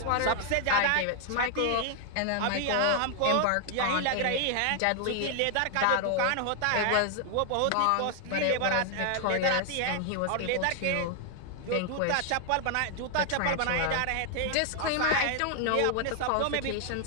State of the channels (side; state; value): both; different; correlation 0.00